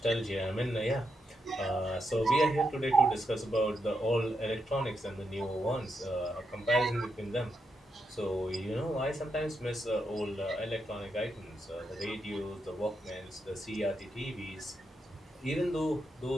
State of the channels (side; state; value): both; normal; correlation 0.83